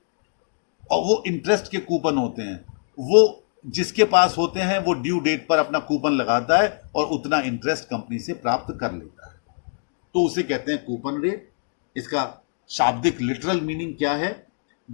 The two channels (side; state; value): right; silent; digital silence